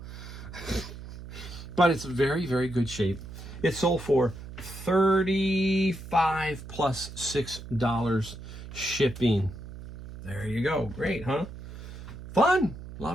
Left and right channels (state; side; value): noise; right; hum, 12 dB below the sound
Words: But it's very good shape. It sold for $35 plus $6 shipping. There you go. Great, huh? Fun. A